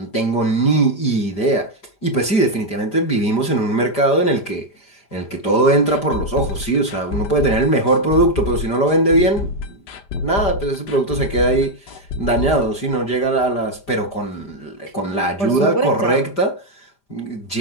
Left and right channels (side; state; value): right; late; 5.0 ms